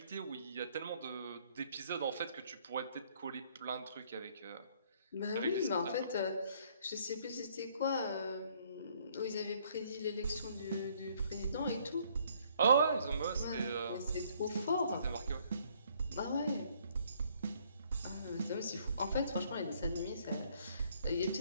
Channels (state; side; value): inverted; both; correlation -0.64